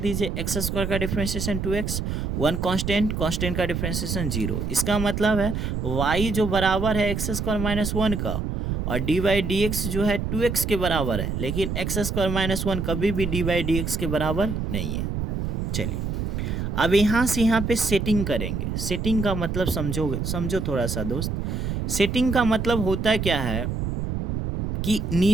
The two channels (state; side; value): noise; right; rumble, 2 dB below the sound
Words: x² का डिफ्रेंशिएशन 2x, 1 कांस्टेंट का डिफ्रेंशिएशन 0। इसका मतलब है y जो बराबर है x² - 1 का, और dy/dx जो है 2x के बराबर है, लेकिन x² - 1 कभी भी dy/dx के बराबर नहीं है। चलिए, अब यहाँ से यहाँ पे सेटिंग करेंगे। सेटिंग का मतलब समझो थोड़ा सा दोस्त। सेटिंग का मतलब होता क्या है कि